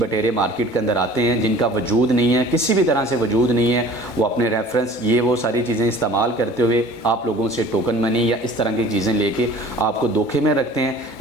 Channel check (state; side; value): late; right; 2.3 ms